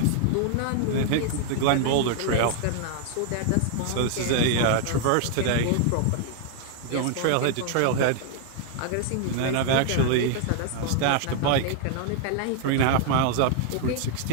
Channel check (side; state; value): both; different; correlation 0.00